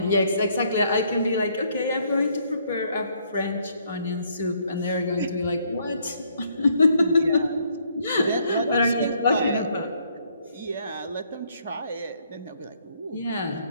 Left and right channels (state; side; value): inverted; both; correlation -0.68